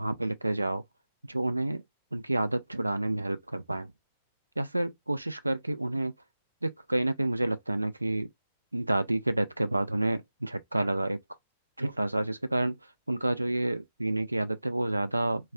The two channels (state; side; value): inverted; both; correlation -0.97